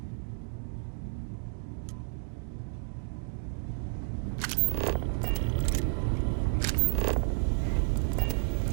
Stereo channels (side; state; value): left; silent; 57 dB below the other